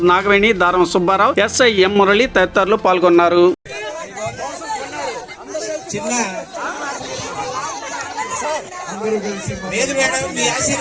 నాగవేణి, దారం సుబ్బారావు, ఎస్ఐ ఎం మురళి తదితరులు పాల్గొన్నారు.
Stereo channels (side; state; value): both; identical; correlation 1.00